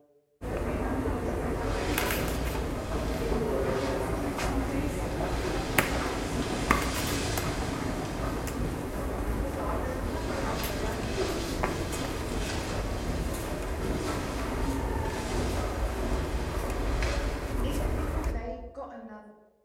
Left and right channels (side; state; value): both; identical; correlation 1.00